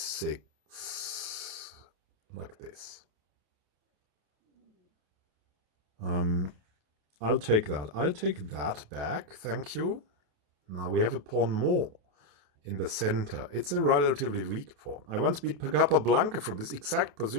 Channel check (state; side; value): late; left; 28 ms